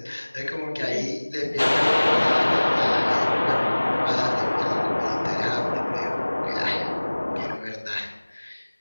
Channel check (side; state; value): both; inverted; correlation -1.00